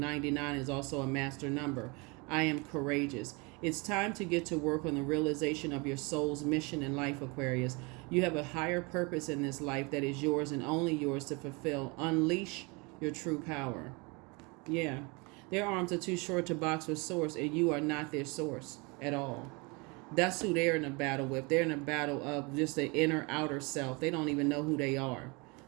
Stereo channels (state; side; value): quieter; left; 28.6 dB